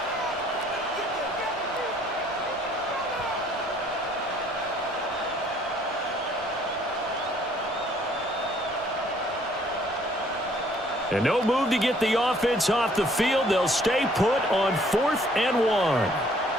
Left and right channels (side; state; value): both; normal; correlation 0.61